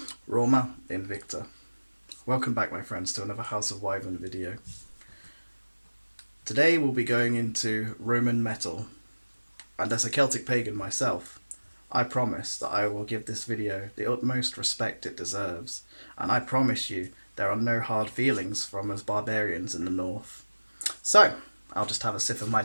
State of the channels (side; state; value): both; inverted; correlation -1.00